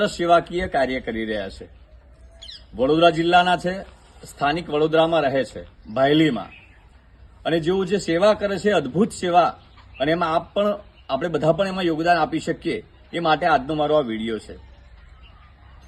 સેવાકીય કાર્ય કરી રહ્યા છે. વડોદરા જિલ્લાના છે, સ્થાનિક વડોદરામાં રહે છે, ભાયલીમાં. અને જેઓ જે સેવા કરે છે, અદ્ભુત સેવા, અને એમાં આપણે બધા પણ એમાં યોગદાન આપી શકીએ એ માટે આજનો મારો આ વિડીયો છે.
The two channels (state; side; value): identical; both; correlation 1.00